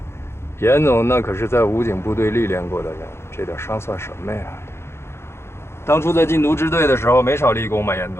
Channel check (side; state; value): right; late; 0.12 ms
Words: 严总那可是在武警部队历练过的人，这点伤算什么呀？当初在禁毒支队的时候没少立功嘛，严